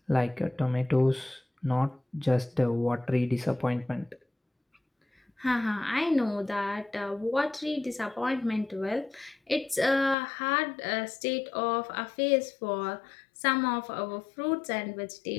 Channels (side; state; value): right; drops out; at 10.2 s